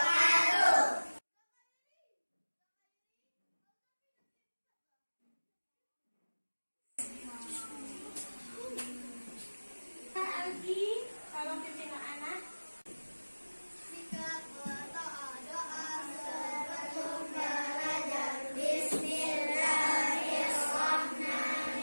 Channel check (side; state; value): both; inverted; correlation -1.00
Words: Kak Algi, tolong pimpin anak. Sikap berdoa sebelum belajar.